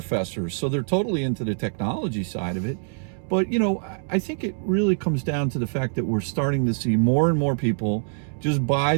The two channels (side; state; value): left; silent; 62 dB below the other